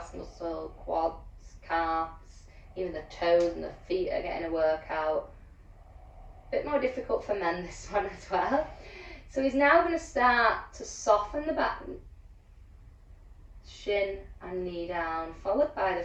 muscle, quads, calves, even the toes and the feet are getting a workout. A bit more difficult for men this one as well. So he's now going to start to soften the back, shin and knee down, followed by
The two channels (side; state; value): both; identical; correlation 1.00